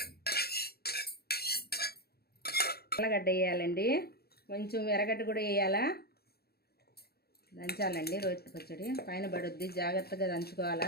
ఎర్రగడ్డ వేయాలండి, కొంచెం ఎర్రగడ్డ కూడా వేయాలా. దంచాలండి. రోటి పచ్చడి పైన పడుద్ది, జాగ్రత్తగా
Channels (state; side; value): late; right; 0.46 ms